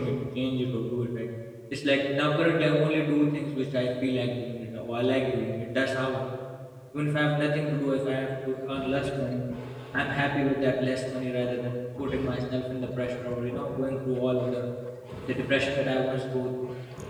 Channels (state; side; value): identical; both; correlation 1.00